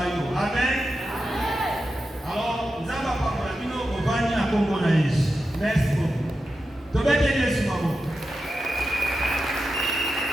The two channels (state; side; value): normal; both; correlation 0.90